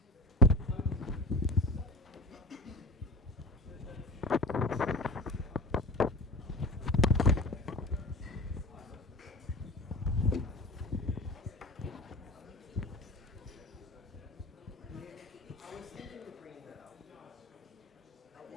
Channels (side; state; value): both; normal; correlation 0.32